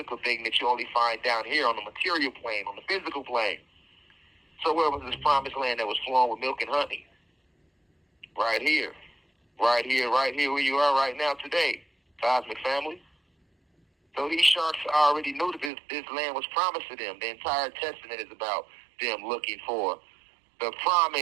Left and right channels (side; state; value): left; drops out; at 15.7 s